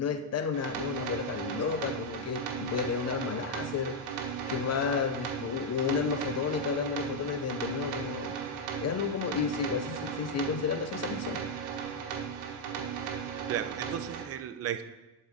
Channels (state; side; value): normal; both; correlation -0.01